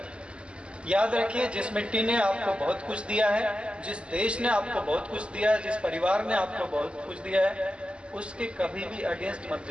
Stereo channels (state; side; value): late; left; 0.053 ms